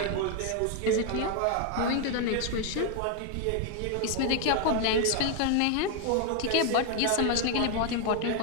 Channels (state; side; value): different; both; correlation 0.01